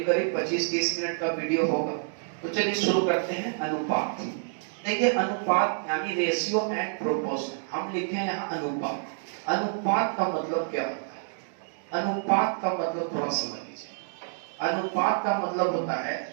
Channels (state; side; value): silent; left; digital silence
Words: 25-30 मिनट का वीडियो होगा। तो चलिए शुरू करते हैं अनुपात। देखिए अनुपात यानी रेशियो एंड प्रोपोर्शन, हम लिखे हैं यहाँ अनुपात। अनुपात का मतलब क्या होता है? अनुपात का मतलब थोड़ा समझ लीजिए। अनुपात का मतलब होता है